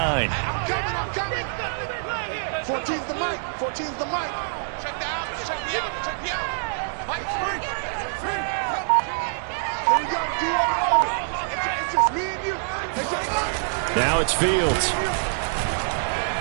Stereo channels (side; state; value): left; silent; digital silence